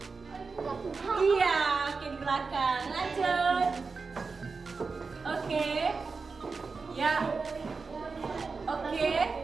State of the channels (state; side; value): quieter; left; 4.5 dB